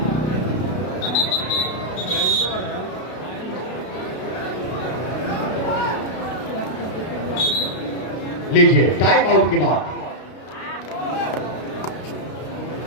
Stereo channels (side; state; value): right; late; 32 ms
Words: लीजिए टाइम आउट के बाद